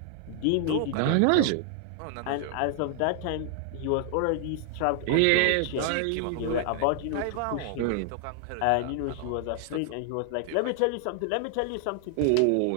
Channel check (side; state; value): both; different; correlation 0.00